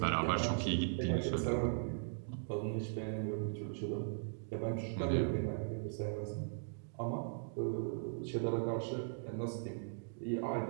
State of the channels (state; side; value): silent; left; digital silence